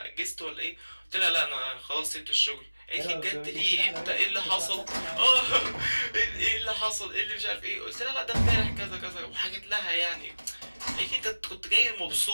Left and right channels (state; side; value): inverted; both; correlation -1.00